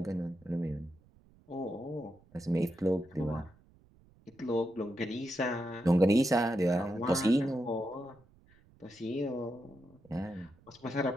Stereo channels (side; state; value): right; noise; rumble, 28 dB below the sound